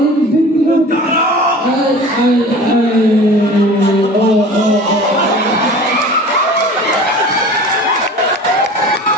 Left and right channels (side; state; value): both; normal; correlation 0.40